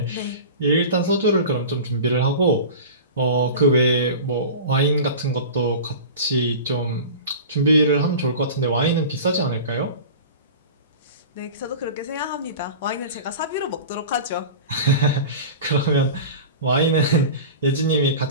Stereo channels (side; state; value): both; inverted; correlation -0.34